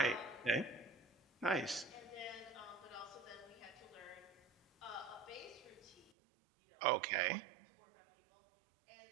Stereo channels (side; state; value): left; drops out; at 6.1 s